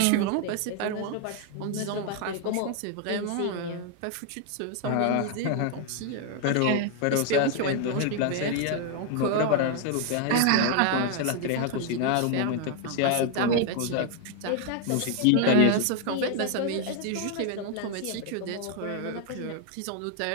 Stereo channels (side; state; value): both; different; correlation 0.00